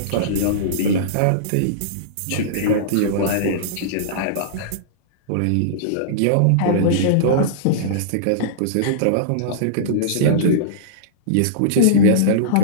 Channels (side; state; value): both; different; correlation -0.03